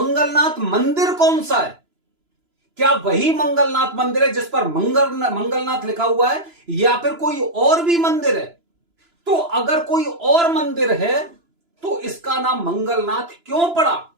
मंदिर कौन सा है। क्या वही मंगलनाथ मंदिर है जिस पर मंगलनाथ लिखा हुआ है, या फिर कोई और भी मंदिर है? तो अगर कोई और मंदिर है तो इसका नाम मंगलनाथ क्यों पड़ा?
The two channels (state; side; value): late; left; 2.9 ms